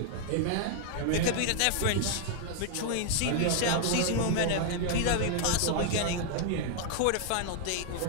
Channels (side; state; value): both; different; correlation 0.00